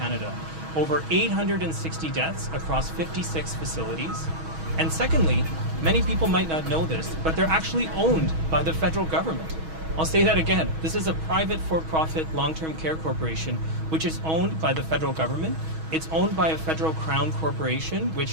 over 860 deaths across 56 facilities. And secondly, many people might not know this, but they're actually owned by the federal government. I'll say that again. This is a private for-profit long-term care corporation which is owned by the federal government. It's owned by a federal crown corporation,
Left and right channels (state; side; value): late; left; 6.2 ms